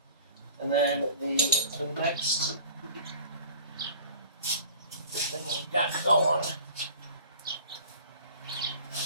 and then the next thing we've got going.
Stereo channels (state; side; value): inverted; both; correlation -0.44